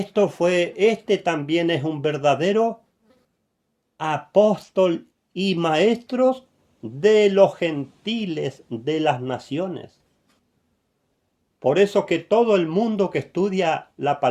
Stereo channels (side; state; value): both; identical; correlation 1.00